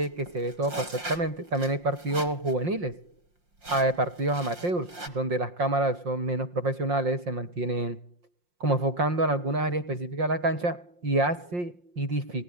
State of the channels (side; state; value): left; late; 5.6 ms